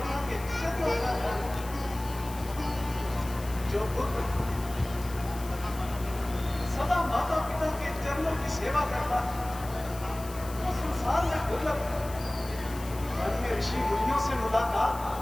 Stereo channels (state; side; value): noise; left; hiss, 16 dB below the sound